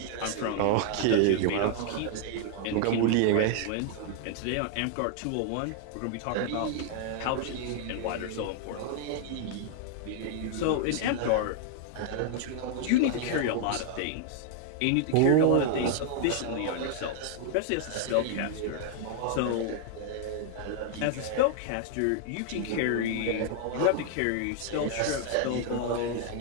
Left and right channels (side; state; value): both; different; correlation 0.00